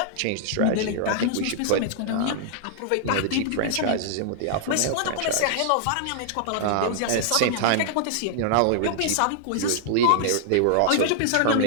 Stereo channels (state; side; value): different; both; correlation -0.01